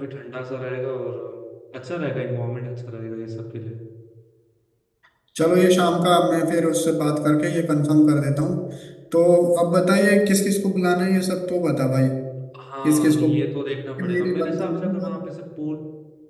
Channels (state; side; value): identical; both; correlation 1.00